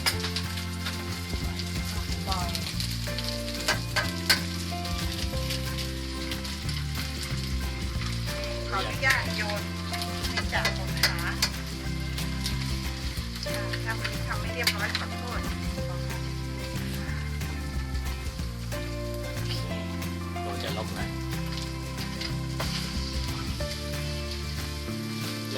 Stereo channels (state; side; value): identical; both; correlation 1.00